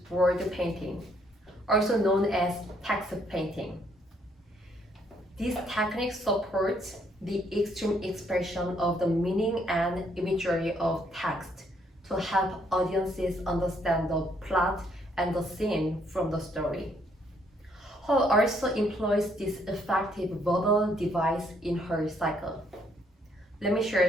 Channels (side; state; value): both; normal; correlation 0.69